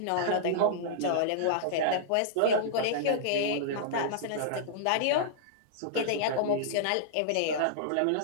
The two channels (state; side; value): different; both; correlation -0.02